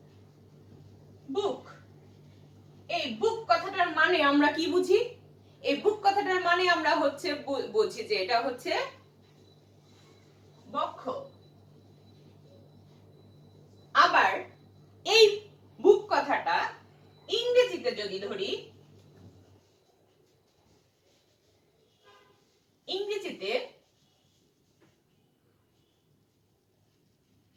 বুক, এই বুক কথাটার মানে আমরা কি বুঝি? এই বুক কথাটার মানে আমরা হচ্ছে বুঝি যে এটা হচ্ছে বক্ষ। আবার এই বুক কথাটা ইংরেজিতে যদি ধরি,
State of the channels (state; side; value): identical; both; correlation 1.00